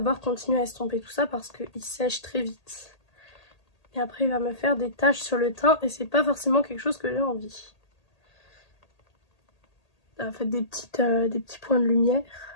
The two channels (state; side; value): late; right; 1.8 ms